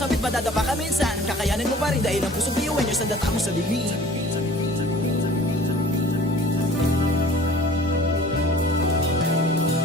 Madadapa ka minsan, kakayanin mo pa rin dahil ang pusong biyuan nyo sa data mo sa dilim.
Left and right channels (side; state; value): both; normal; correlation 0.48